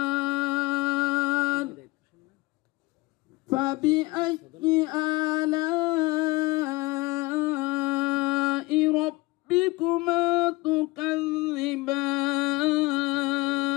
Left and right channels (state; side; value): quieter; right; 22.2 dB